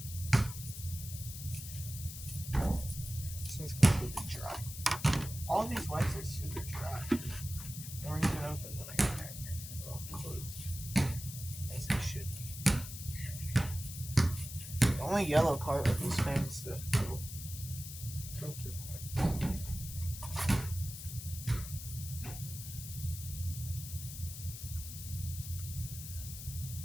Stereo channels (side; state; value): left; noise; hiss, 10 dB below the sound